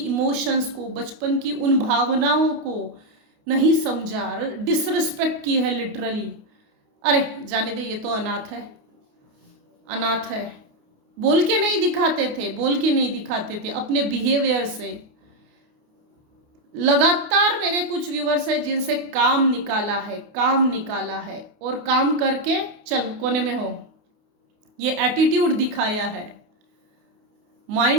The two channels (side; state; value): left; late; 28 ms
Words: को, बचपन की उन भावनाओं को नहीं समझा, डिसरिस्पेक्ट की है लिटरली। अरे जाने दे, ये तो अनाथ है। बोल के नहीं दिखाते थे अपने बिहेवियर से। लगातार मेरे कुछ व्यूअर्स है जिनसे काम निकाला है और काम करके चल कोने में हो, ये एटीट्यूड दिखाया है,